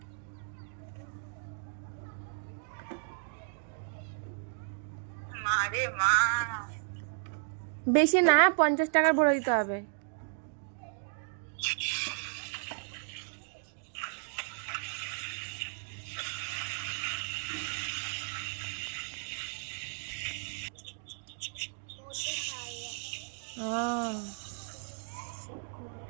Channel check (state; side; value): silent; left; digital silence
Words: বেশি না, 50 টাকার ভরে দিতে হবে।